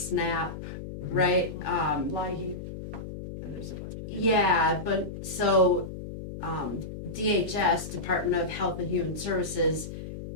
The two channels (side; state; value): left; noise; hum, 9 dB below the sound